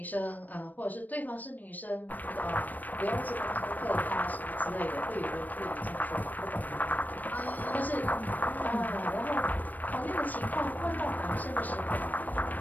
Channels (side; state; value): right; late; 0.084 ms